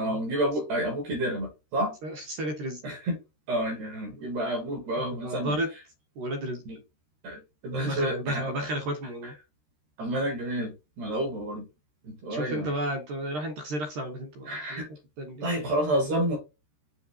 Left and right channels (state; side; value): late; left; 13 ms